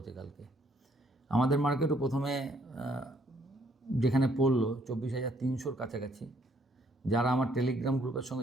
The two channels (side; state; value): both; normal; correlation 0.67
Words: কালকে। আমাদের মার্কেটও প্রথমে যেখানে পড়লো 24,300-র কাছাকাছি। যারা আমার টেলিগ্রাম গ্রুপের